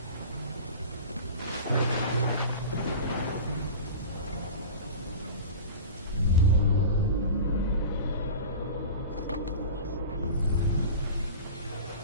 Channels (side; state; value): both; inverted; correlation -0.33